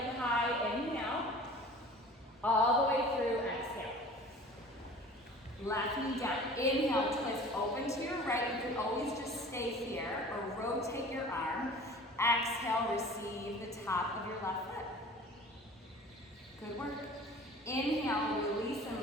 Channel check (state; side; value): normal; both; correlation 0.44